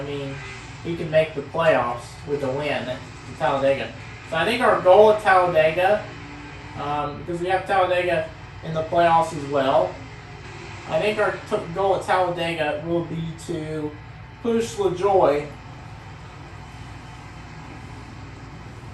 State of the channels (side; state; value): both; identical; correlation 1.00